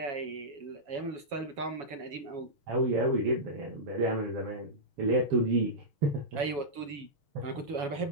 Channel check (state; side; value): late; left; 7.1 ms